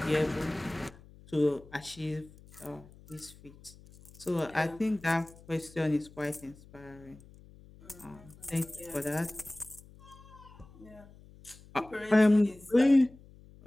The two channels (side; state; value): left; noise; hum, 22 dB below the sound